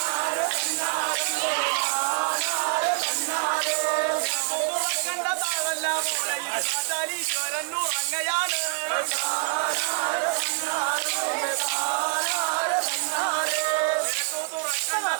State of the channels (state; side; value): silent; left; 61 dB below the other